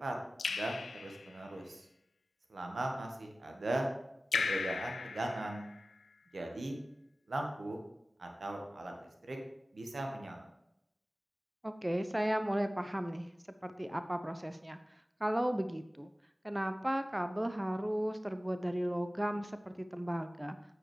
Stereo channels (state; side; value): normal; both; correlation 0.96